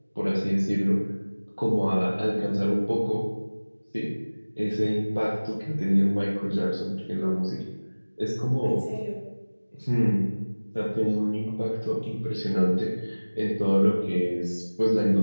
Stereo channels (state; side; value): inverted; both; correlation -1.00